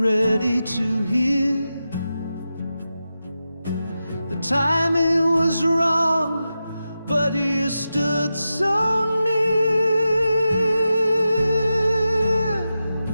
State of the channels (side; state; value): both; inverted; correlation -0.91